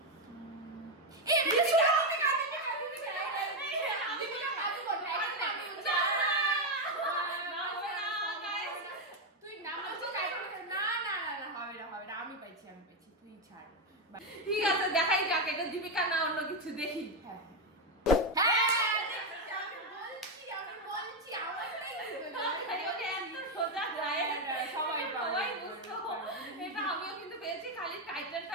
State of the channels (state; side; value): normal; both; correlation 0.06